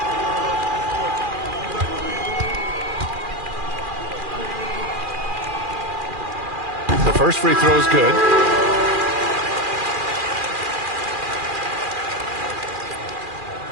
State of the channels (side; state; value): left; late; 2.4 ms